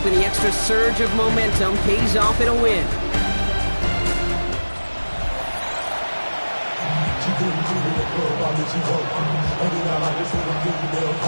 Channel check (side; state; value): both; inverted; correlation -1.00